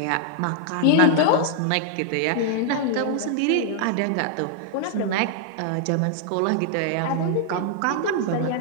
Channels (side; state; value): both; different; correlation -0.01